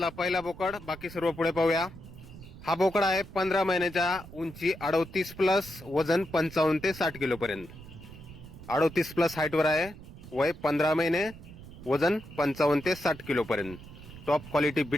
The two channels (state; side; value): noise; right; rumble, 16 dB below the sound